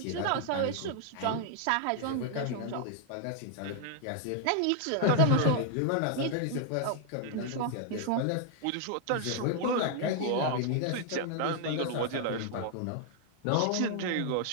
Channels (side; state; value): both; different; correlation 0.00